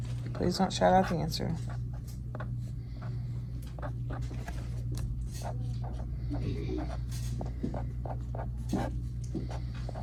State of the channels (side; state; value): both; identical; correlation 1.00